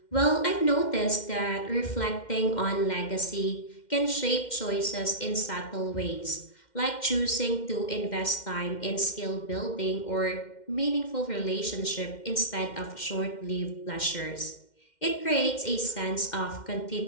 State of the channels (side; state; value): right; late; 2.1 ms